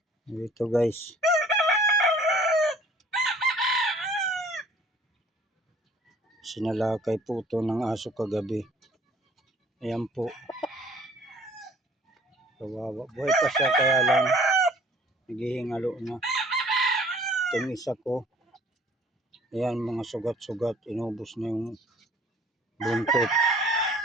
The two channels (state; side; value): normal; both; correlation 0.54